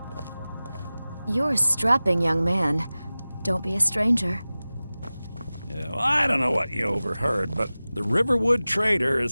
You're a strapping young man. Don't be a stranger. Yeah, well, I don't know what you overheard, but the Riverwood Trader is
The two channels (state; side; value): inverted; both; correlation -0.97